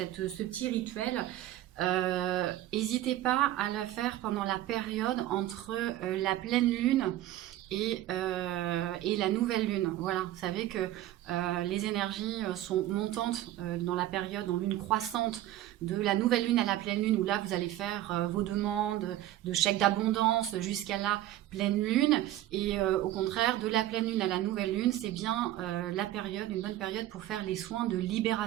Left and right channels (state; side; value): quieter; left; 14.0 dB